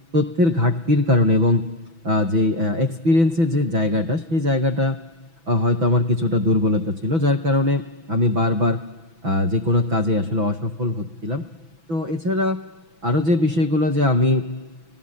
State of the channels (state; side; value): late; left; 6.1 ms